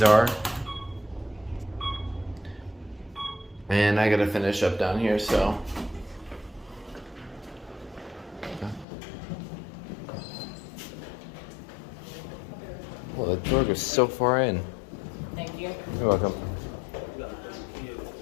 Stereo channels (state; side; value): drops out; right; at 8.8 s